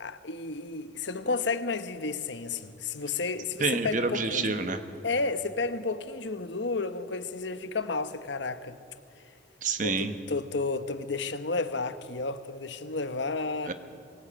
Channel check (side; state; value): both; normal; correlation -0.07